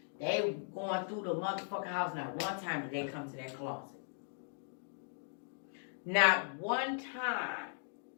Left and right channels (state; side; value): silent; right; digital silence